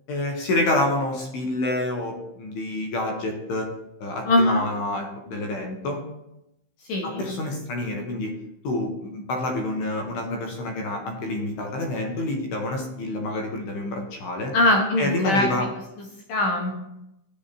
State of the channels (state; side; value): late; right; 15 ms